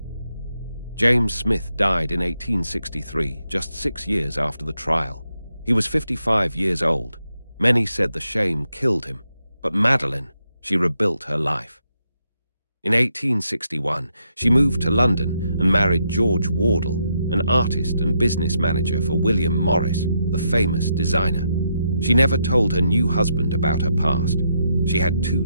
James Smith died in 1863, just 6 years after the trial. He was 55 years old. Many said the shame killed him, but Madeleine, she rebuilt her life. In 1861, she moved to London and married George Wardle, an artist and business manager for William Morris, the famous designer. She never told her new husband about her past. She had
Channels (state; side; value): inverted; both; correlation -0.80